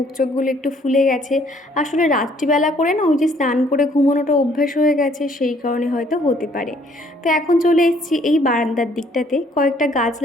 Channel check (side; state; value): both; normal; correlation 0.63